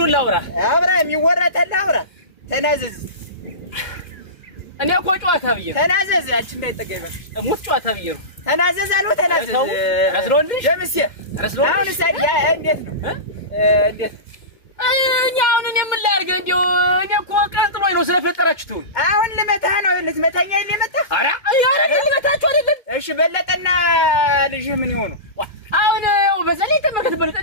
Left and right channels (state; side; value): late; right; 2.1 ms